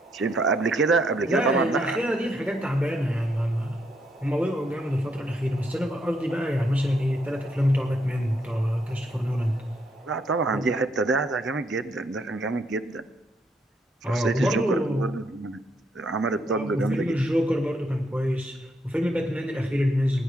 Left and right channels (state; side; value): normal; both; correlation 0.75